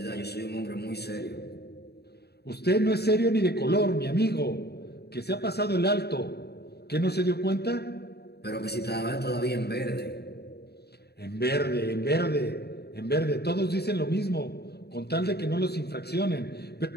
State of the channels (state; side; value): late; right; 0.47 ms